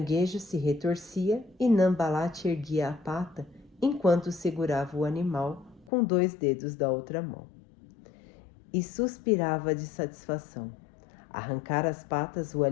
se retorcia e Nambalat erguia a pata enquanto segurava o animal com 2 dedos da outra mão. E suspirava de satisfação. Arrancar as patas o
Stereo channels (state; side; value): drops out; right; at 5.9 s